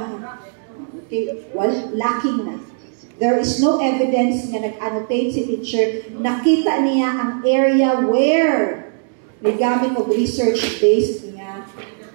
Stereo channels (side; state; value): left; silent; digital silence